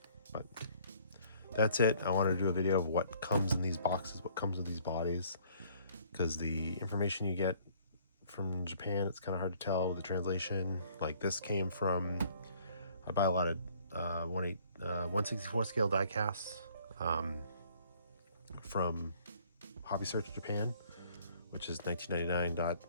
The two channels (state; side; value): inverted; both; correlation -0.59